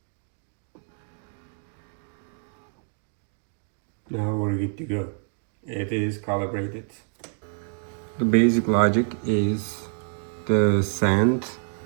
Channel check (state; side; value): silent; left; 56 dB below the other